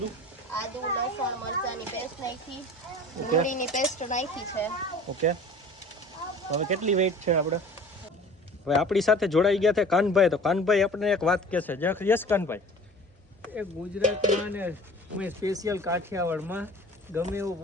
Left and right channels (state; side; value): normal; both; correlation 0.43